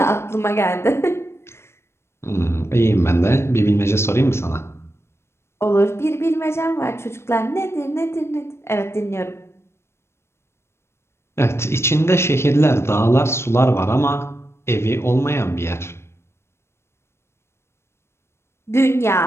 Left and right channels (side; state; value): right; late; 0.12 ms